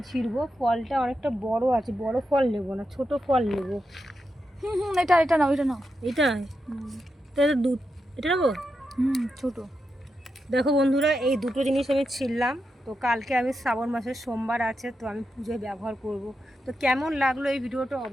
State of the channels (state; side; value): normal; both; correlation 0.87